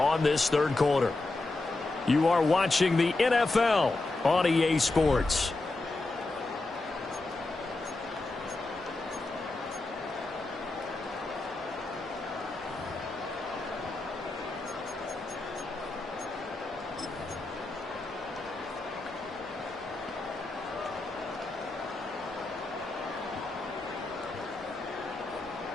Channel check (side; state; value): right; quieter; 3.2 dB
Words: this third quarter. You are watching the NFL on EA Sports.